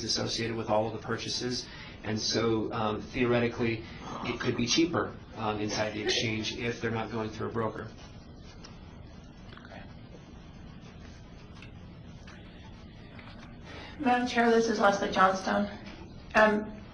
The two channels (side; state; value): both; identical; correlation 1.00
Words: associated with all of the purchases. And so theoretically, it could be cheaper inside the exchange if they're not going through a broker. Madam Chair, this is Leslie Johnstone.